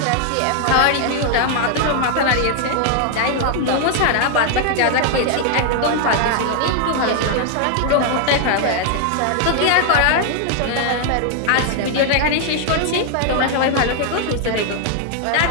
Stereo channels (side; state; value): both; different; correlation 0.00